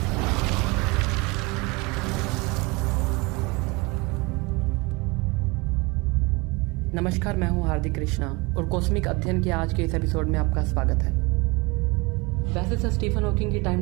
नमस्कार, मैं हूँ हार्दिक कृष्णा और कॉस्मिक अध्ययन के आज के इस एपिसोड में आपका स्वागत है। वैसे सर स्टीफन हॉकिंग की टाइम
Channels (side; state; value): left; quieter; 25.5 dB